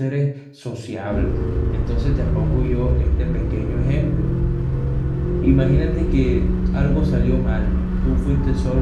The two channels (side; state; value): both; identical; correlation 1.00